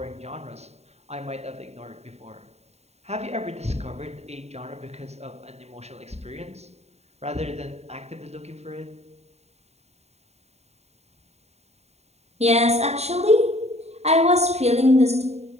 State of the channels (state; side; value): late; left; 0.31 ms